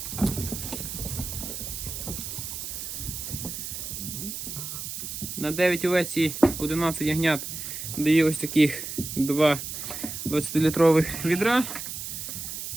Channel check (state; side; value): noise; right; hiss, 7 dB below the sound